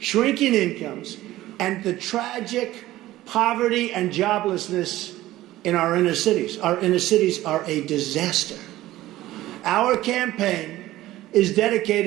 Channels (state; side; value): quieter; left; 15.8 dB